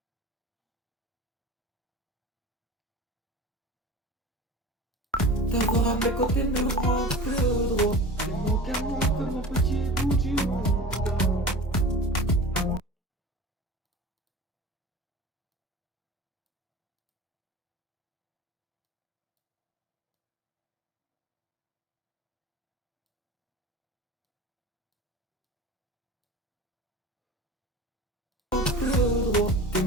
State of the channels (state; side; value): normal; both; correlation 0.37